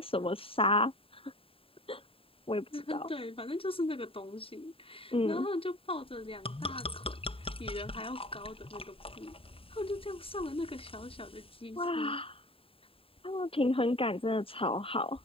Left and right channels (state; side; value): late; right; 0.27 ms